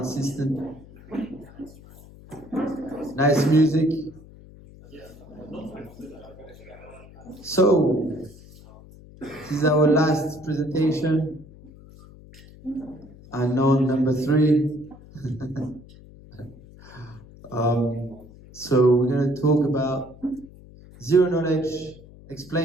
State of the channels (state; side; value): noise; left; hum, 21 dB below the sound